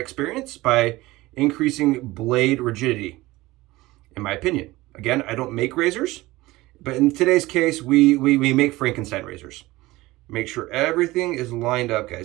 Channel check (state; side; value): quieter; left; 19.3 dB